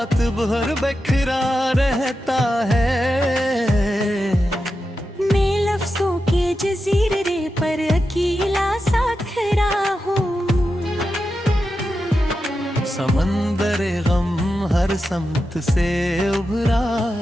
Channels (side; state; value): both; normal; correlation 0.90